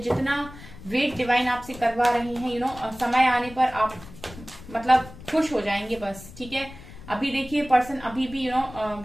वेट डिवाइन आपसे करवा रहे हैं, समय आने पर आप मतलब खुश हो जाएंगे बस, ठीक है। अभी देखिए पर्सन अभी भी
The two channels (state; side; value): noise; left; rumble, 17 dB below the sound